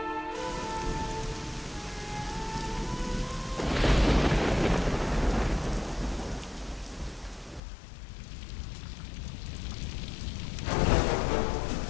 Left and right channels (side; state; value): right; drops out; at 7.6 s